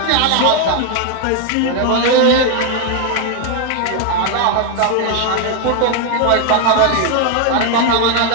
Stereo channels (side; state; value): both; different; correlation 0.01